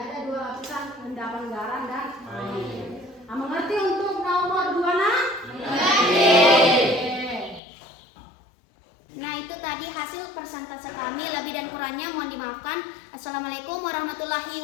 dua lapisan endapan garam dan air. Mengerti untuk nomor 2 nah? Nah, itu tadi hasil persentase kami. Lebih dan kurangnya mohon dimaafkan. Assalamualaikum warahmatullahi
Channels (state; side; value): drops out; right; at 7.6 s